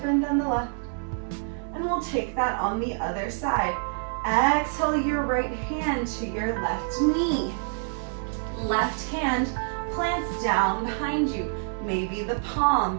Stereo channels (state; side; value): silent; left; digital silence